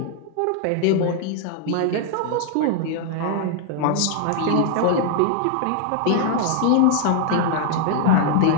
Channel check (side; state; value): both; different; correlation 0.00